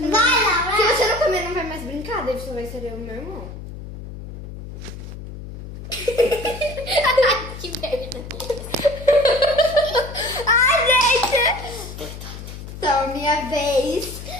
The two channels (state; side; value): noise; left; hum, 11 dB below the sound